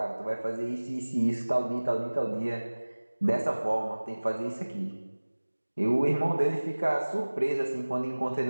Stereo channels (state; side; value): inverted; both; correlation -1.00